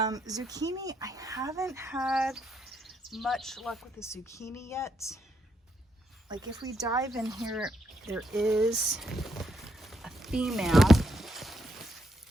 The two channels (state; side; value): normal; both; correlation 0.77